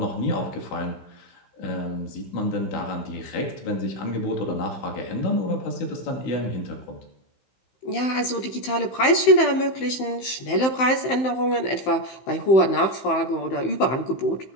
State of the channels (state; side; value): late; right; 15 ms